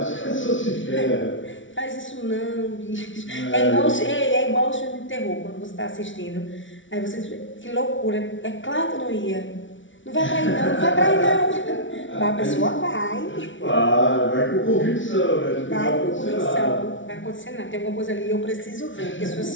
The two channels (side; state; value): right; late; 0.56 ms